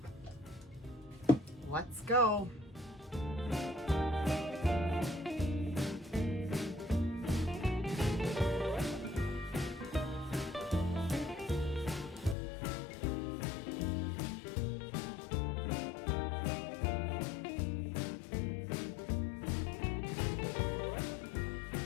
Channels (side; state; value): right; drops out; at 12.4 s